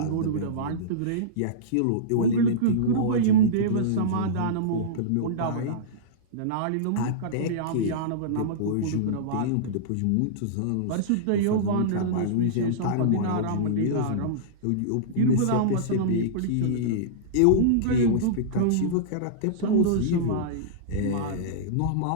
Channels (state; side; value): different; both; correlation -0.03